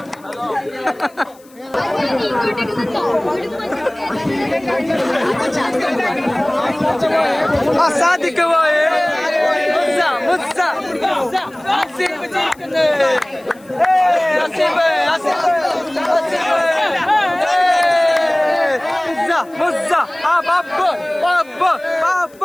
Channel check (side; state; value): left; noise; hiss, 28 dB below the sound